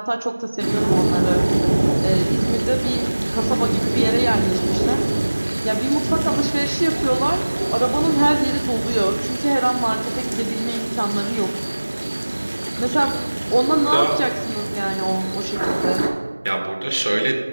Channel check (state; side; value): inverted; both; correlation -1.00